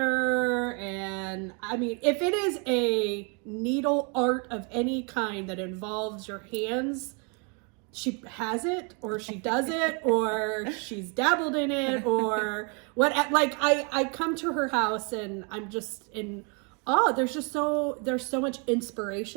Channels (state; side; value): quieter; left; 35.1 dB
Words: And I mean, if it is a needle art of any kind that involves your hands, she has it, or she does it, or she's dabbled in it, or what. Like I come to her house and I'm just in awe. There's so much